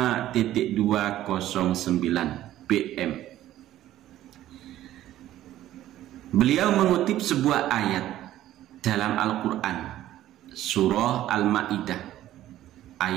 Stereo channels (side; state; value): left; quieter; 13.5 dB